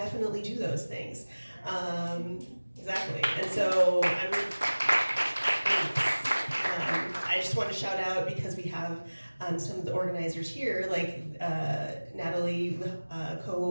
do those things. Exactly. And so I just want to shout out, because we have some of the organizers here, like Natalie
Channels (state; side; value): inverted; both; correlation -1.00